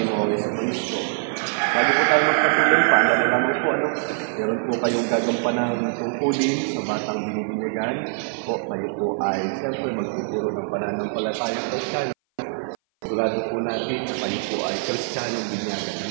sa Kristo. Bago po tayo magpatuloy, paalala naman po, meron po kayong gagampanang tungkulin sa batang binibinyagan. Kayo po ay siyempre magtuturo ng pananampalatayang Kristiyano. Sigurado po natin na kayo po ay Kristiyanong binyagan.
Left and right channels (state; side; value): silent; left; 57 dB below the other